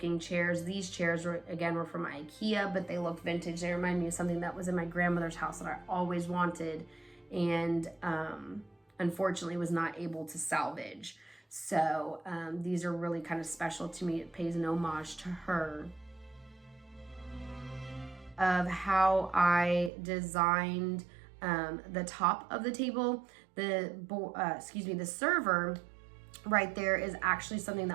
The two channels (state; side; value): drops out; left; at 19.9 s